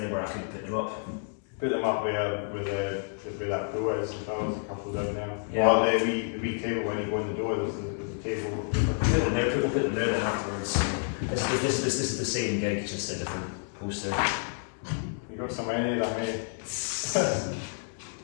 anywhere I could put them up? Put them up where that door is. If I was a couple down there. Yeah. Or the wee table when you go in the door. There's a table. We'll put them there then afterwards. This is the same gig, just a different poster. You got so many of them, eh?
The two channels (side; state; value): right; silent; 58 dB below the other